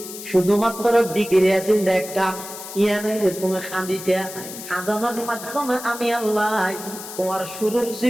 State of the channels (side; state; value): left; noise; hiss, 11 dB below the sound